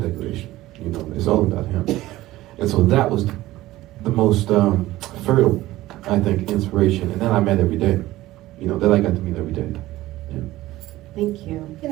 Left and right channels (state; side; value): quieter; left; 16.6 dB